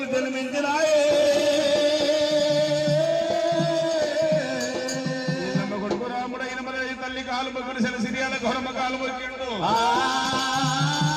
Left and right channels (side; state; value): both; identical; correlation 1.00